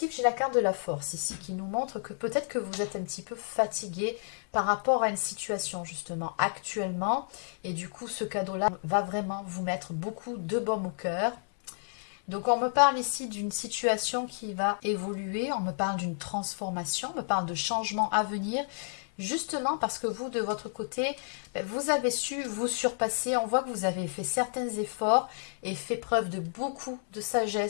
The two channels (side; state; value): right; silent; 57 dB below the other